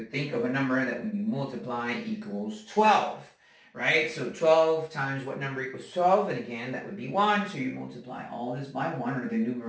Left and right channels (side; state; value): both; identical; correlation 1.00